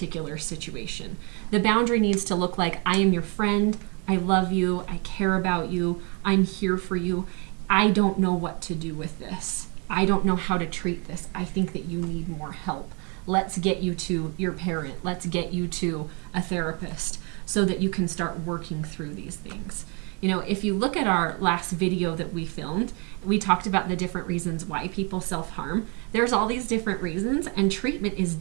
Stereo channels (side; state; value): left; quieter; 34.0 dB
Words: situation. The boundary needs to look like, I am your friend, I love you, I care about you, I'm here for you. I don't know what to do with this. I don't know how to treat this. I think that you need more help. Let's get you to your parent. Let's get you to a therapist so that you can start working through these things. If you look at our last video that we filmed, we talked about the different reasons why people self-harm. There's all these different reasons, and treatment is